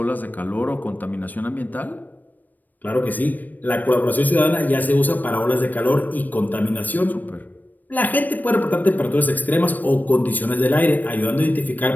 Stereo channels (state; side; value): late; right; 0.086 ms